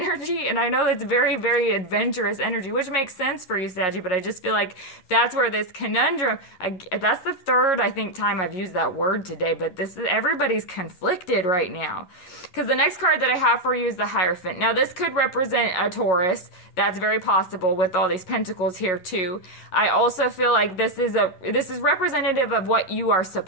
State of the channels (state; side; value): late; right; 11 ms